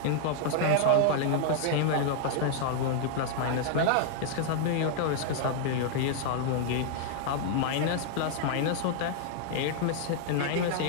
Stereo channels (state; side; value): different; both; correlation -0.01